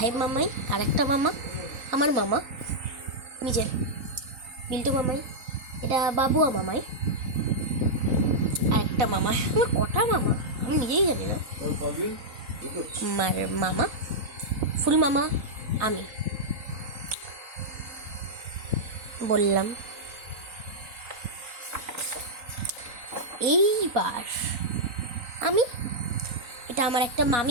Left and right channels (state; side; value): late; left; 3.9 ms